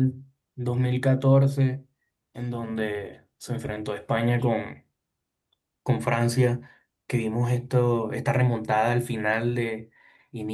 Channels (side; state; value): both; identical; correlation 1.00